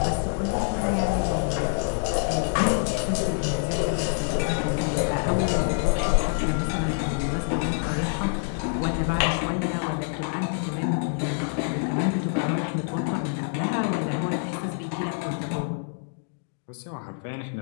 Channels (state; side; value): silent; right; 61 dB below the other